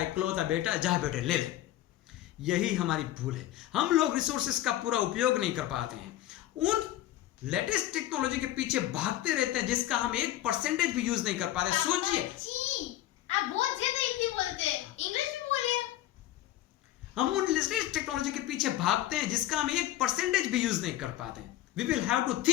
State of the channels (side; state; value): right; quieter; 14.0 dB